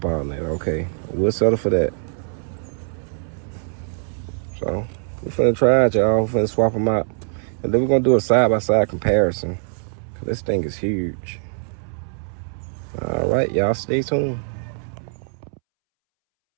alternator. Okay, we'll settle for that. So we're finna try it, y'all. We're finna swap them out. And then we're gonna do a side-by-side comparison. This thing is huge. All right, y'all stay tuned.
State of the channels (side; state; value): left; silent; 64 dB below the other